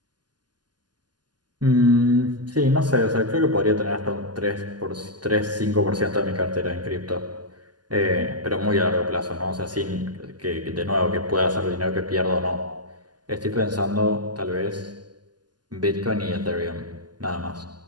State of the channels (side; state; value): left; late; 0.70 ms